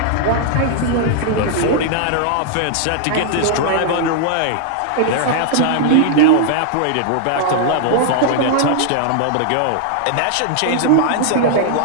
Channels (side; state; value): both; different; correlation -0.01